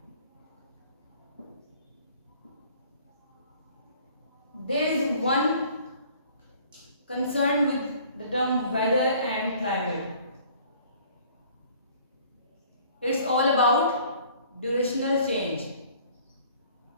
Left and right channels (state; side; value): inverted; both; correlation -0.54